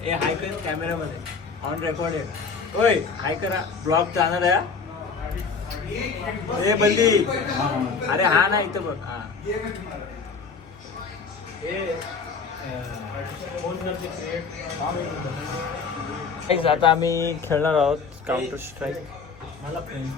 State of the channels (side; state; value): right; quieter; 5.1 dB